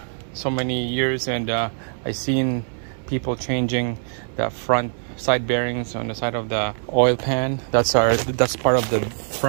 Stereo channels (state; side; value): silent; left; 58 dB below the other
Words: so many years, and I've seen people changing the front side bearings on the side of the oil pan. That's part of the